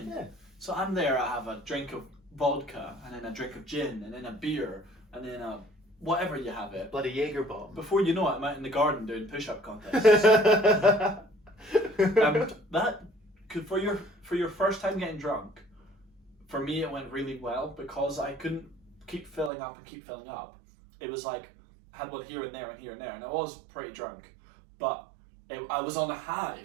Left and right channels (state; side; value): drops out; left; at 19.5 s